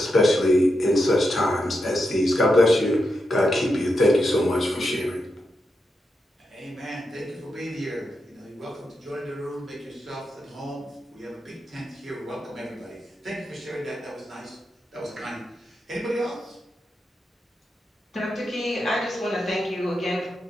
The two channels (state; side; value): normal; both; correlation 0.86